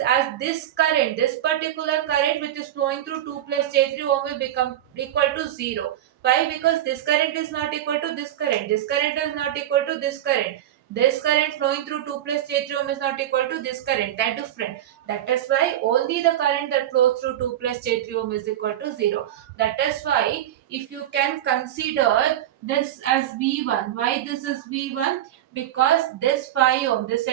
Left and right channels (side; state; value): left; quieter; 12.2 dB